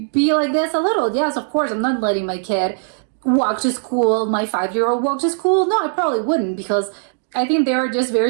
be like this a little. Yes, of course, I'm not letting my kid walk to school, my 5-year-old walk to school. No, I probably wouldn't, because I think they're just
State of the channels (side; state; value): left; silent; digital silence